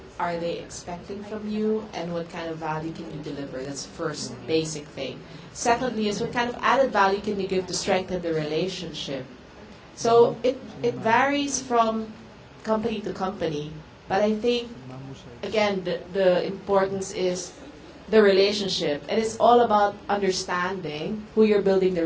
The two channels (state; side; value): identical; both; correlation 1.00